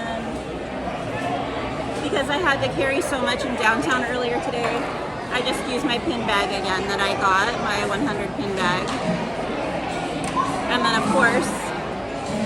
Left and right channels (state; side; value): identical; both; correlation 1.00